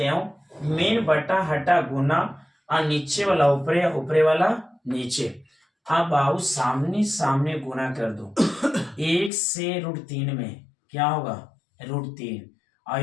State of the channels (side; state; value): right; drops out; at 9.3 s